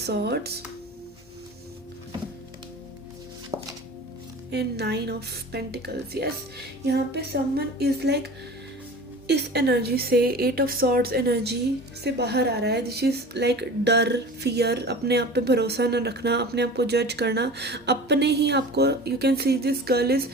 and Nine of Pentacles. Yes, यहाँ पे someone is like इस energy से, eight of swords energy से बाहर आ रहा है. This is like डर, fear, अपने आप पे भरोसा न रखना, अपने आप को जज करना, अपने ही आपको, you can see this girl is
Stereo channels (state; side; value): noise; left; hum, 29 dB below the sound